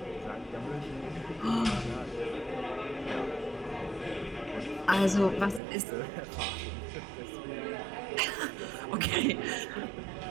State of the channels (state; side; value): drops out; left; at 5.6 s